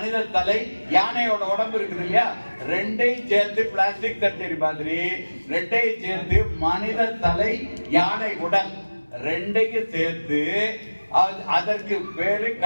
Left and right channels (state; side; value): inverted; both; correlation -1.00